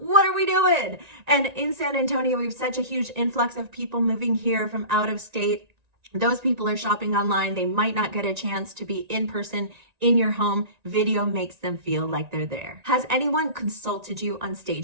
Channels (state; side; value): late; left; 1.9 ms